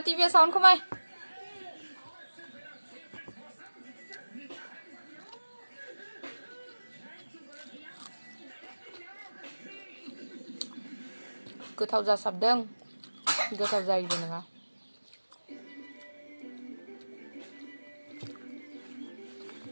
साउन्ड खमाय गोथाव जासाबदों गोथाव जायोबो नङा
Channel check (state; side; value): inverted; both; correlation -1.00